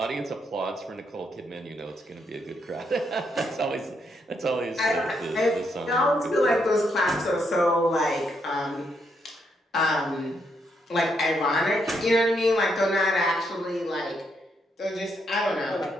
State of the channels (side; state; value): both; normal; correlation 0.77